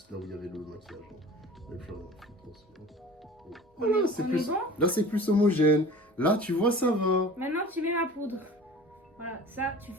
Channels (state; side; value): normal; both; correlation 0.41